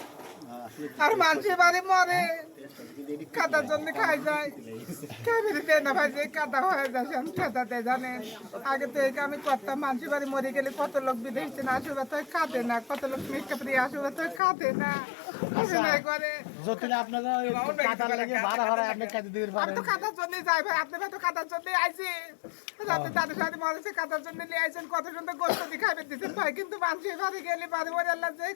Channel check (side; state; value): right; drops out; at 14.4 s